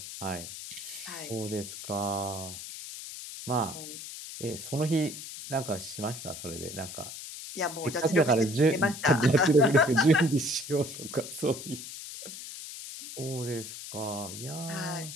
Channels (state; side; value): noise; left; hiss, 10 dB below the sound